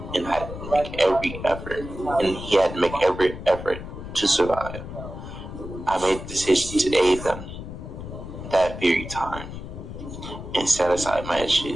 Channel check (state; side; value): noise; left; rumble, 10 dB below the sound